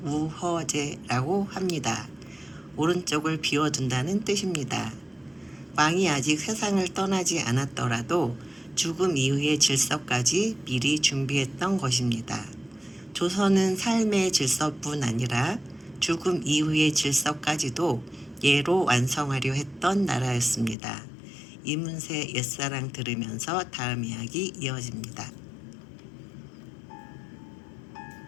우허제라고 합니다. 오른쪽을 비워둔다는 뜻입니다. 왕이 아직 세상을 떠나지 않았더라도 죽음 이후의 질서까지 미리 준비했던 것입니다. 조선은 삶의 질서뿐 아니라 죽음 이후의 질서까지도 예로 완성하려 했던 나라였습니다. 이문세 옛사랑 들으면서 다음 이야기 이어집니다.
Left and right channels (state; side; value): drops out; right; at 20.8 s